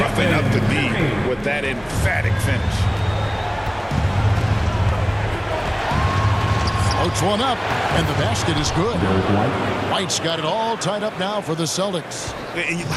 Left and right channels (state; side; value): identical; both; correlation 1.00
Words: up the D with that emphatic finish. Floats one up, and the basket is good. White's got it all tied up now for the Celtics. And